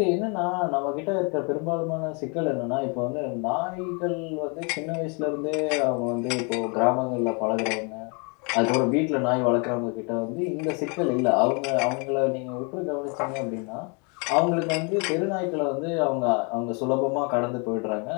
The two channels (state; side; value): quieter; right; 34.5 dB